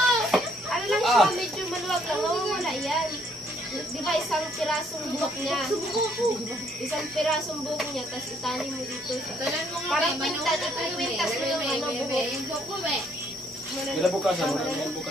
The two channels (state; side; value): normal; both; correlation 0.67